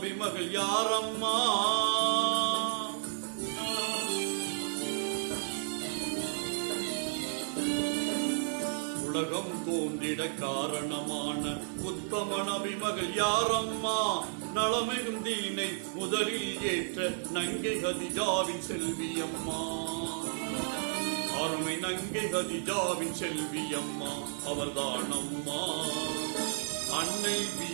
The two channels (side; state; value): left; silent; 56 dB below the other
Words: மகள் யாரம்மா? உலகம் தோன்றிட காரணமான உத்தம நபி மகள் யாரம்மா? நலமிகும் தீனை முதலில் ஏற்ற நங்கை கதிஜாவின் செல்வியம்மா. அருமை நங்கை கதிஜாவின் செல்வியம்மா அவர்தானம்மா. அன்னை